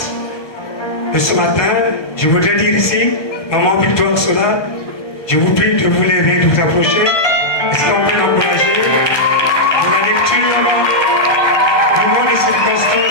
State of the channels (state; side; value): late; right; 1.2 ms